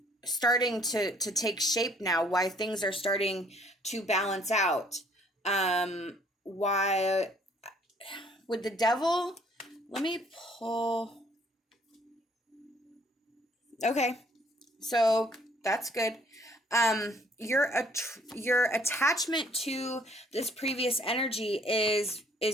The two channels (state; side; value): normal; both; correlation 0.60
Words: starting to take shape now, why things are starting to balance out. Why with the Devil, let me pull. Okay, so that's good. Your attachment to this previous energy is